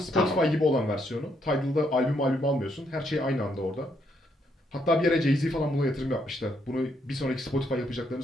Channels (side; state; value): both; normal; correlation 0.74